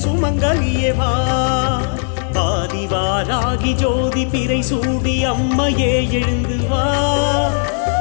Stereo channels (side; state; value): right; silent; digital silence